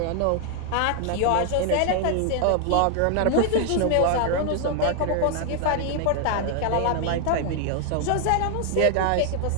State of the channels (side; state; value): both; different; correlation 0.00